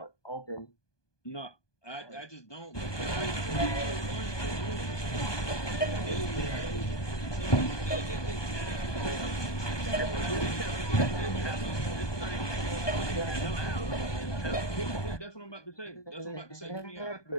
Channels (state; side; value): late; right; 1.2 ms